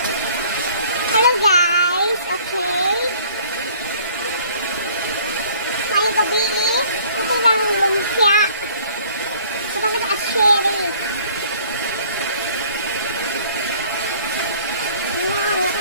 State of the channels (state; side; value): inverted; both; correlation -0.55